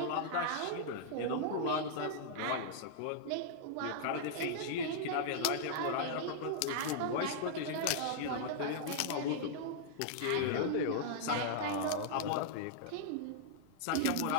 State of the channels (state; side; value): different; both; correlation -0.01